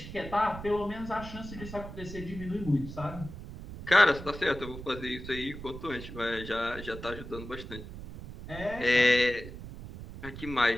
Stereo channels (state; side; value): noise; right; rumble, 11 dB below the sound